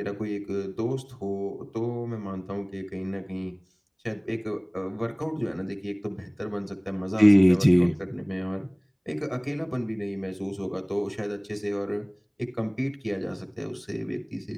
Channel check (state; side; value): identical; both; correlation 1.00